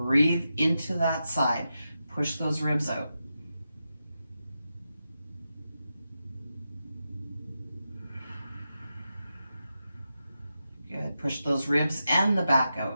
into that side. Push those ribs out. Good. Push those ribs and the back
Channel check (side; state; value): both; inverted; correlation -0.89